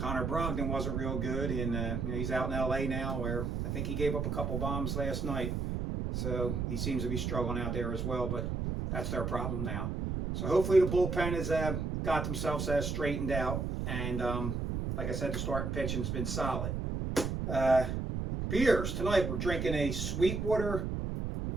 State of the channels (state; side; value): noise; right; rumble, 2 dB below the sound